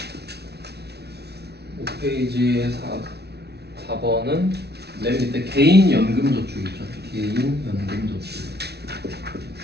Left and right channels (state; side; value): late; left; 0.48 ms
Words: 5페이지의 4번은 맨 밑에 개인연금저축 있죠. 개인연금저축.